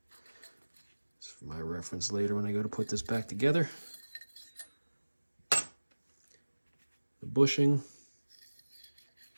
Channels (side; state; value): both; inverted; correlation -1.00